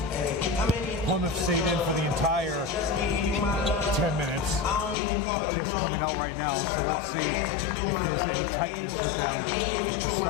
Plymouth stayed in for the entire 10 minutes, just coming out right now. So let's see if there's any tightness with them to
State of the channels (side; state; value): right; drops out; at 5.0 s